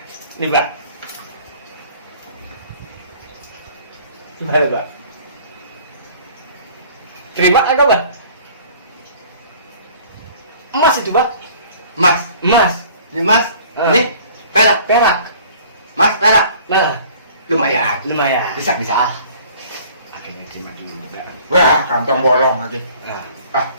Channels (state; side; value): inverted; both; correlation -0.51